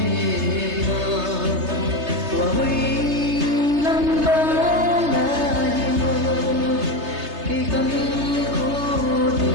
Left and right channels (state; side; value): late; left; 3.3 ms